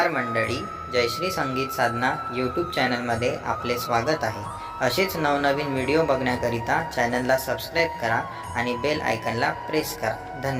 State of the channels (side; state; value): both; identical; correlation 1.00